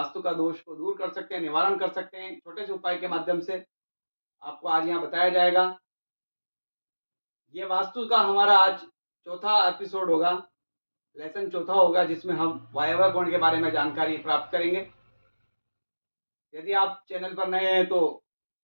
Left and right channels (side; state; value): both; inverted; correlation -1.00